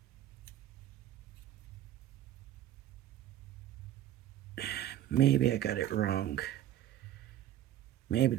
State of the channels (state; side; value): quieter; left; 12.1 dB